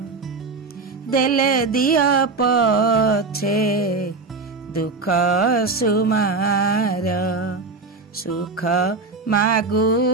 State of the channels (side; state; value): left; quieter; 4.0 dB